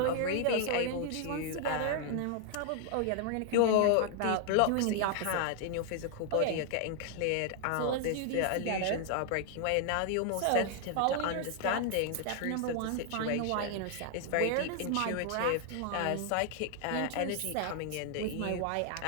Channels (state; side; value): different; both; correlation 0.00